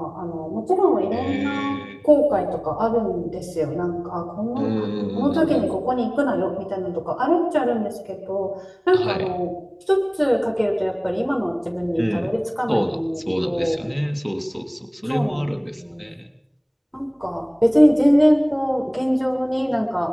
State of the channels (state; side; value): identical; both; correlation 1.00